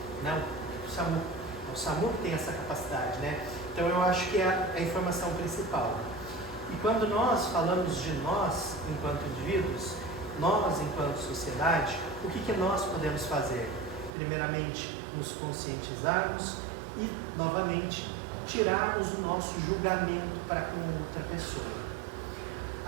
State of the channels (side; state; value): left; drops out; at 14.1 s